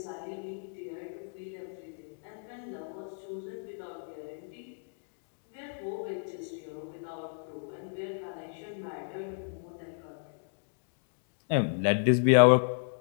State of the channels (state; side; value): silent; right; digital silence